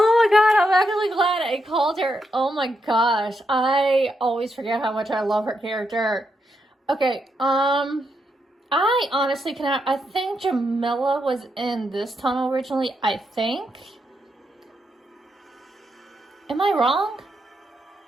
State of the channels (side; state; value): both; normal; correlation 0.82